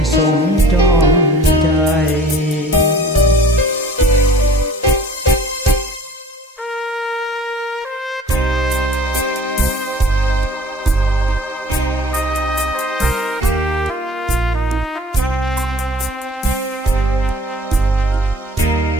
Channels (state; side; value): normal; both; correlation 0.48